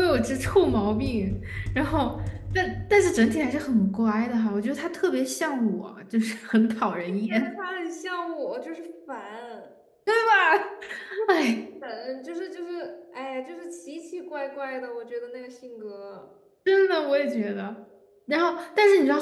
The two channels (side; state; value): both; identical; correlation 1.00